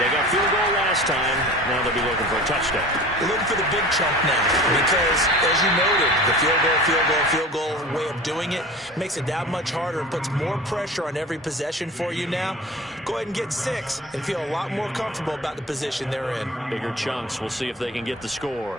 They got field goal last time. Now they'll be looking for a touchdown. They're looking for the big chunk now because, as you noted, the field goal way of doing it makes it that much harder and puts more pressure on every possession for you now. Go ahead and get 6 and feel a lot more comfortable about the position they're in. Bigger chunks. We'll see if they can get the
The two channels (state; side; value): normal; both; correlation 0.38